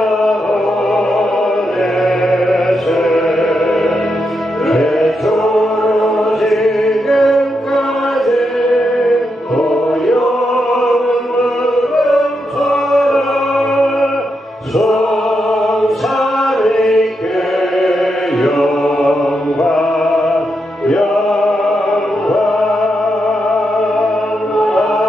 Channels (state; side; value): normal; both; correlation 0.84